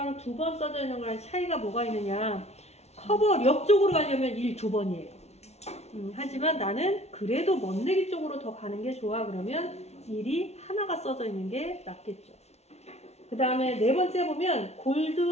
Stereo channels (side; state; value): right; late; 0.31 ms